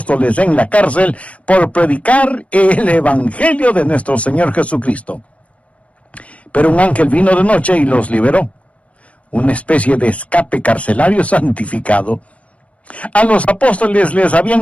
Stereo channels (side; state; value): right; late; 0.064 ms